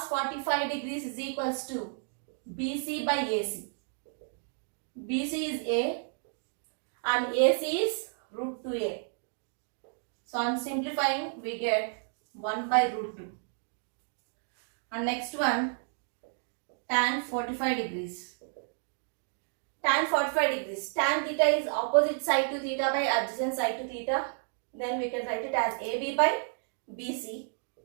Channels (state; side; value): silent; left; 57 dB below the other